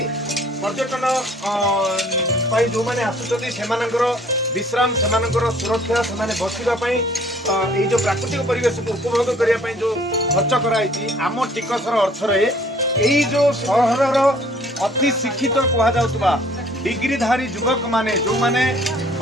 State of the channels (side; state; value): both; normal; correlation 0.57